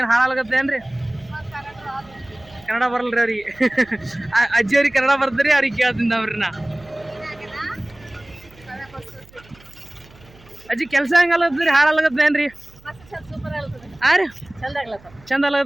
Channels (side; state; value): right; noise; hum, 25 dB below the sound